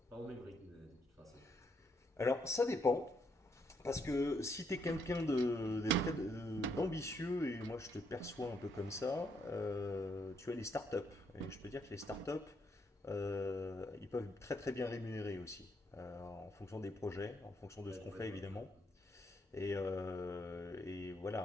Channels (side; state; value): both; normal; correlation 0.75